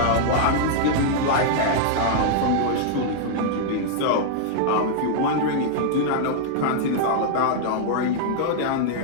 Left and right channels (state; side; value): different; both; correlation -0.01